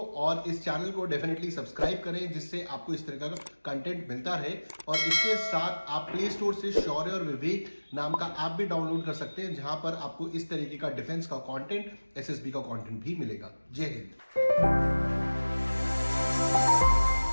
और इस चैनल को डेफिनेटली सब्सक्राइब करें जिससे आपको इस तरह का कंटेंट मिलता रहे, और इसके साथ आप प्ले स्टोर से शौर्य और विवेक नाम का ऐप भी डाउनलोड कर सकते हैं, जहां पर आपको इस तरीके का डिफेंस का कंटेंट, एसएसबी का कंटेंट भी मिलेगा। जय हिंद।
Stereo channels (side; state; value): both; inverted; correlation -1.00